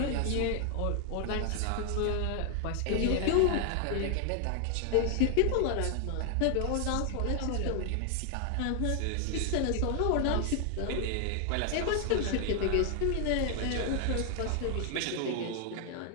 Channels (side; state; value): both; different; correlation 0.00